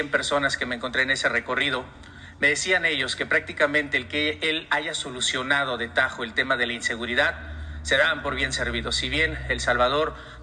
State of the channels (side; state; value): both; identical; correlation 1.00